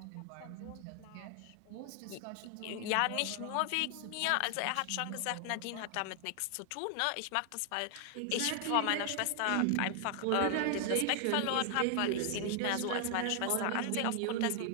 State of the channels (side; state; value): both; different; correlation 0.00